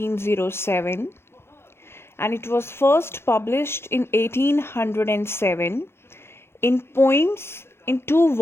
and it was first published in 1807 in poems in two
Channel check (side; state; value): right; late; 0.12 ms